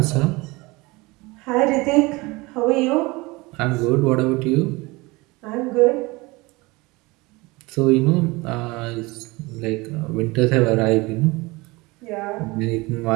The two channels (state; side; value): quieter; left; 23.4 dB